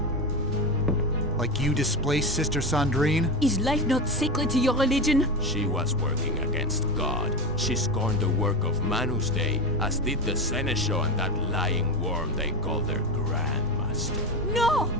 Like you displaced Sister Sandrine? Is life not sacred to your religion? She was working against God. She scorned the work of Manus Dei, as did the Seneschal and that lying worm they call their Grandmaster. No!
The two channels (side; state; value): both; normal; correlation 0.18